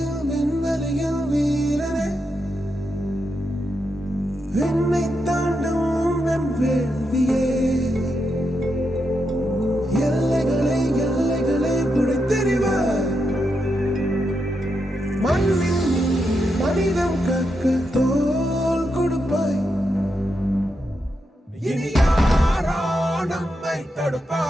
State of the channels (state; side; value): normal; both; correlation 0.84